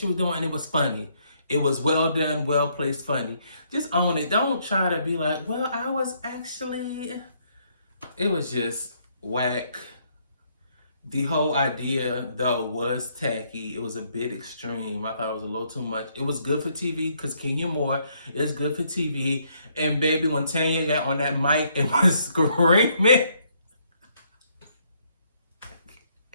was doing, and it was funny. It was well done, well placed, funny. Just own it. Don't try to be like, well, I was actually. It was just whack. The whole idea, though, was tacky. It was a bit extreme. I thought it was a little too much. It was good for TV because Kenya Moore is good for TV. And baby, when Tanya got on that mic and was screaming,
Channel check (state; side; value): inverted; both; correlation -0.71